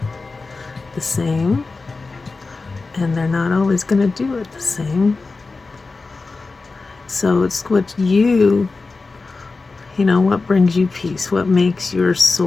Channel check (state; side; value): quieter; right; 3.9 dB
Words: the same. And they're not always going to do it the same. So it's what what brings you peace, what makes your